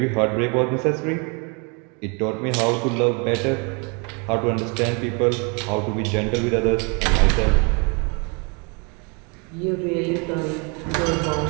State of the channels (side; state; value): left; quieter; 33.5 dB